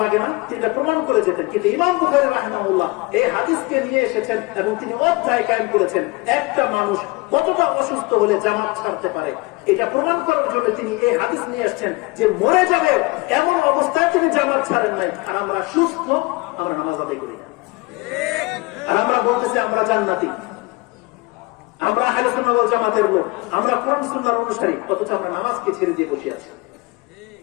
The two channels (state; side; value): quieter; right; 24.5 dB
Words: লাগে না, তিনি প্রমাণ করে যেতেন। কিন্তু ইমাম বুখারী রাহিমাহুল্লাহ এই হাদিসকে নিয়ে এসেছেন এবং তিনি অধ্যায় কায়েম করেছেন, একটা মানুষ কতটা অসুস্থ হলে জামাত ছাড়তে পারে এটা প্রমাণ করার জন্য তিনি এই হাদিস নিয়ে এসেছেন যে মরে যাবে এমন অবস্থায় তিনি জামাত ছাড়েন নাই। আর আমরা সুস্থ, আমরা নামাজ আদায় করি না, আর আমরা বলতেছি আমরা জান্নাতি, আমরা আহলে সুন্নাহ ওয়াল জামাতের লোক, আমরা কোরআন সুন্নাহর অনুসারী, অথচ আমরা নামাজকে ছেড়ে দিয়ে বসে আছি।